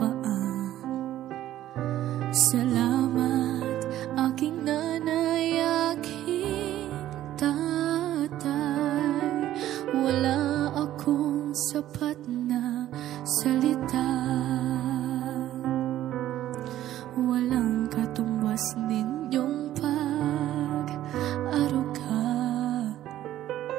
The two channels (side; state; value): left; quieter; 13.1 dB